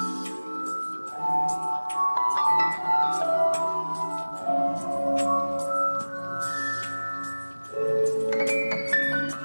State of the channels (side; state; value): both; inverted; correlation -1.00